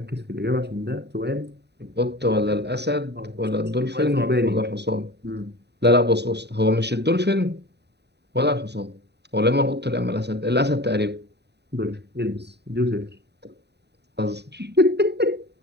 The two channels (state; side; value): late; left; 0.49 ms